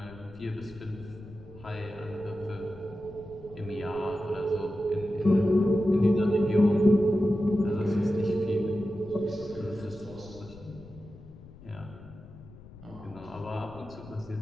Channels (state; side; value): noise; left; rumble, 19 dB below the sound